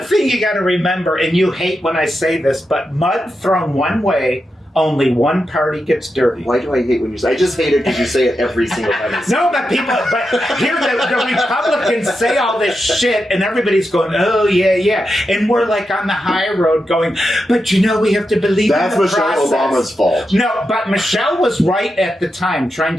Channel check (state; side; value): normal; both; correlation 0.87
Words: thing you got to remember, and you hate when I say this, but mud thrown one way, only one party gets dirty. Why do I hate when you say? I just hate it because you say it every single time. No, but here the Republicans say all this shit, and everybody's going, oh yeah, and we're like on the high road going, but we have to believe that's in the Michelle process. Obama's fault. No, but Michelle was right at the time, trying